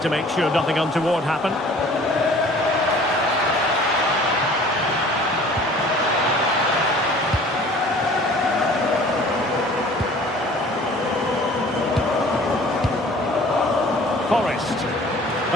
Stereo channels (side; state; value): both; normal; correlation 0.49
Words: to make sure nothing untoward happened. Forrest.